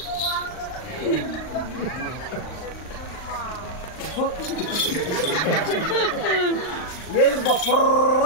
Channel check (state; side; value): late; right; 39 ms